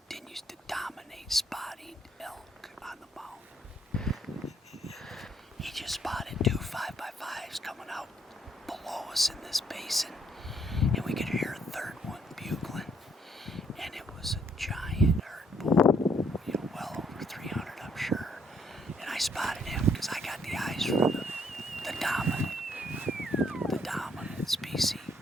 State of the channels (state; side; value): normal; both; correlation 0.69